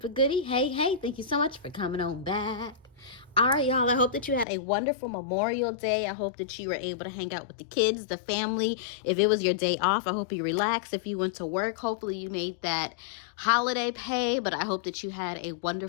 goodie, hey, thank you so much for coming on back. All right, y'all, I hope that you had a wonderful Memorial Day. I hope that you were able to hang out with the kids, the family. If it was your day off, I hope you relaxed. If you went to work, hopefully you made that holiday pay, but I hope that you had a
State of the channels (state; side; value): drops out; right; at 4.5 s